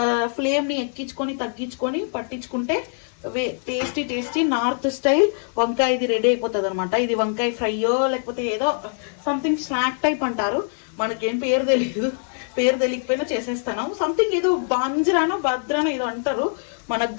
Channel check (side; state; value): right; silent; 61 dB below the other